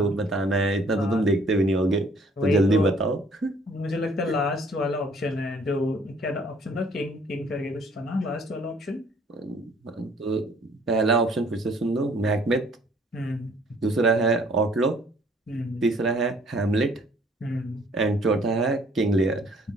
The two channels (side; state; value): both; normal; correlation 0.59